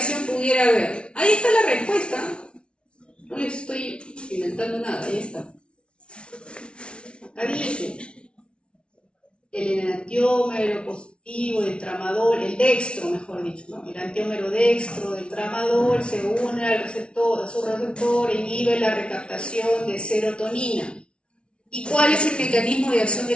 pudiera haber? Ahí está la respuesta. No les estoy inventando nada, ahí está. Acá dice, el enantiómero positivo del tramadol, el dextro, mejor dicho, ¿no? El enantiómero dextro del tramadol se une a su receptor, inhibe la recaptación de serotonina. ¿Y cuál es el mecanismo de acción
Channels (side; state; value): right; late; 0.058 ms